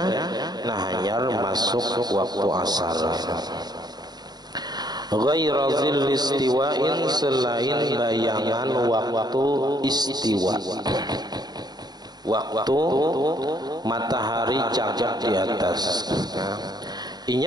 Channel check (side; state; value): left; late; 0.20 ms